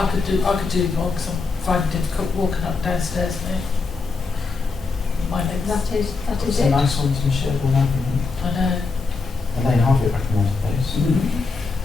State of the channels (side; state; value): right; quieter; 4.2 dB